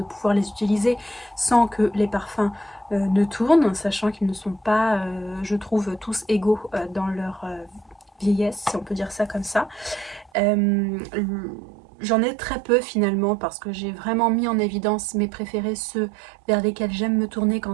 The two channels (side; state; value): left; drops out; at 10.3 s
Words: pouvoir les utiliser sans que les parfums ne tournent, sachant qu'ils ne sont pas, je trouve, tous égaux dans leur vieillesse, si on peut dire ça comme ça. J'en ai très peu finalement parce que j'ai vraiment mis en évidence mes préférés, ceux vers lesquels j'aime me tourner quand